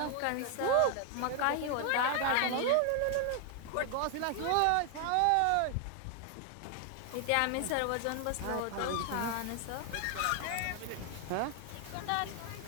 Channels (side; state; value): both; different; correlation 0.00